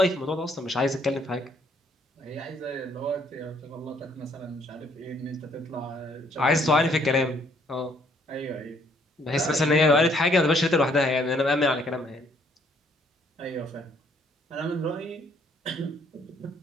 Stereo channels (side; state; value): both; normal; correlation 0.66